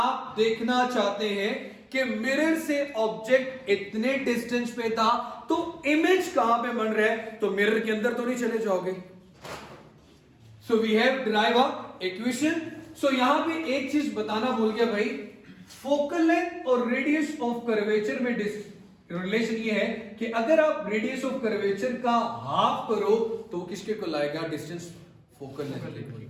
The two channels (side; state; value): both; identical; correlation 1.00